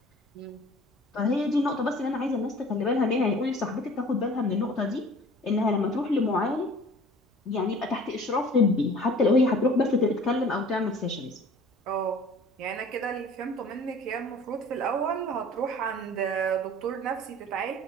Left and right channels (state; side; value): normal; both; correlation 0.47